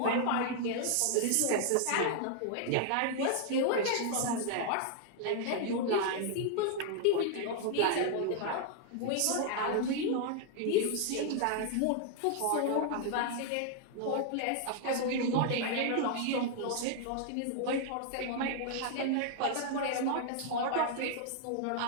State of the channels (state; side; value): different; both; correlation 0.00